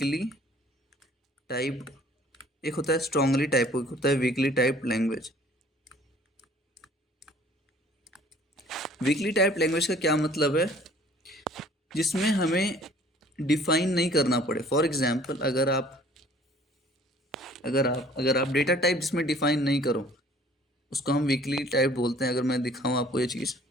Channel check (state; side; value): normal; both; correlation 0.54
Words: typed. एक होता है स्ट्रांगली टाइप, एक होता है weekly type language. Weekly type language का क्या मतलब है? जिसमें हमें डिफाइन नहीं करना पड़े। फॉर एग्जाम्पल, अगर आप डेटा टाइप जिसमें डिफाइन नहीं करो, उसको हम वीकली टाइप बोलते हैं। अगर मैं दिखाऊं आपको ये चीज़,